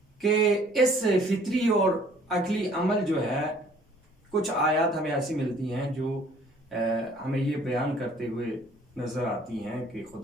کہ اس فطری اور عقلی عمل جو ہے، کچھ آیات ہمیں ایسی ملتی ہیں جو ہمیں یہ بیان کرتے ہوئے نظر آتی ہیں کہ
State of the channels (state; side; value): normal; both; correlation 0.56